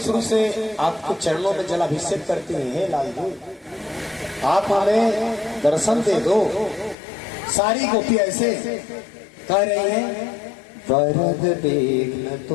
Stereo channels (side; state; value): right; drops out; at 7.0 s